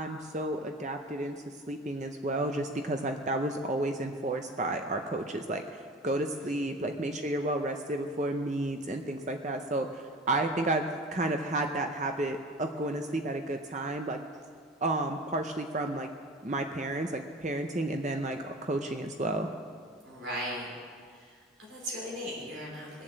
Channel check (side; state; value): both; normal; correlation 0.38